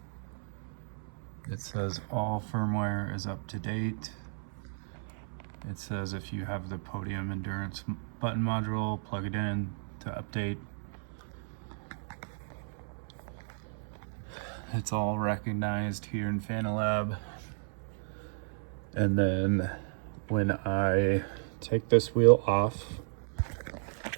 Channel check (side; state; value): left; silent; 55 dB below the other